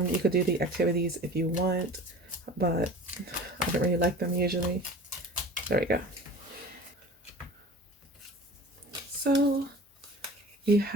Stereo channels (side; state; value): both; normal; correlation 0.40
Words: could do the activities if you want, but I don't really like them usually. There we go. So you